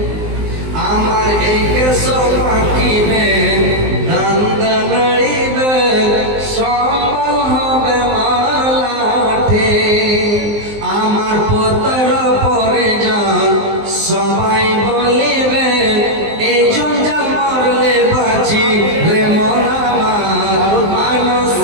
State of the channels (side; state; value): left; late; 19 ms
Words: আমার এই কেশ পাকিবে, দন্দ নড়িবে, সম্বল হবে মালাঠে। আমার পুত্র পরিজন সবাই বলিবে, এই জঞ্জাল মরলে বাঁচি রে মন আমার,